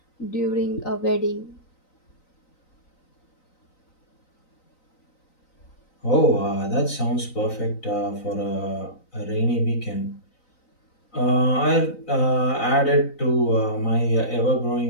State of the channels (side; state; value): right; late; 3.9 ms